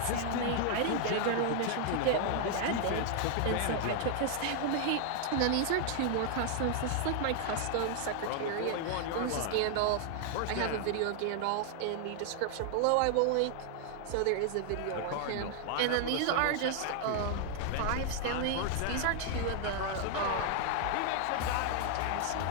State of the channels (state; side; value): different; both; correlation 0.00